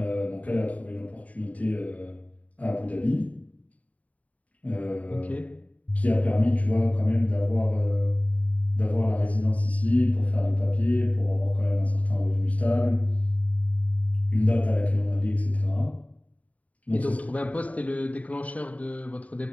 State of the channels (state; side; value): late; right; 0.069 ms